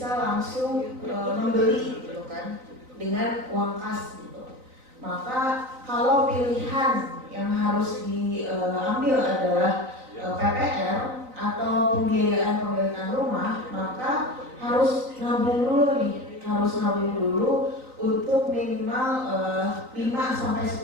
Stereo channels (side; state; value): left; late; 3.9 ms